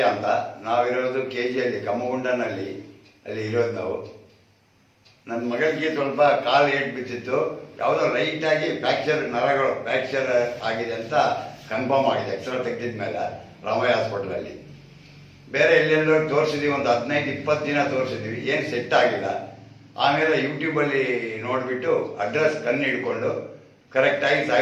ಅಂತ. ನಾವಿರೋದು KGಯಲ್ಲಿ ಕಮ್ಮಗುಂಡನಲ್ಲಿ, ಅಲ್ಲಿ ಇರೋದು ನಾವು. ನನ್ನ ಮಗಳಿಗೆ ಸ್ವಲ್ಪ ಕಾಲು ಏಟ್ ಬಿದ್ದಿತ್ತು, ಯಾವುದೋ ಲೈಟಾಗಿ ನರಗಳು ಫ್ರ್ಯಾಕ್ಚರ್ ಆಗಿದೆ ಅಂತ ಕನ್ಫರ್ಮ್ ಆಗಿದೆ ಎಕ್ಸ್ರಾ ತೆಗೆದಿದ ಮೇಲೆ ರಾಮಯ್ಯ ಹಾಸ್ಪಿಟ್ಲಲ್ಲಿ. ಬೇರೆ ಎಲ್ಲೆಲ್ಲೋ ತೋರಿಸಿದ್ವಿ, ಒಂದು 15-20 ದಿನ ತೋರಿಸಿದ್ವಿ, ಏನು ಸೆಟ್ ಆಗಿಲ್ಲ. ಆಮೇಲೆ ಯೂಟ್ಯೂಬಲ್ಲಿ ನೋಡಿಬಿಟ್ಟು ಅಡ್ರೆಸ್ ಕಣ್ಣು ಹಿಡ್ಕೊಂಡು ಕರೆಕ್ಟಾಗಿ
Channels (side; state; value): both; identical; correlation 1.00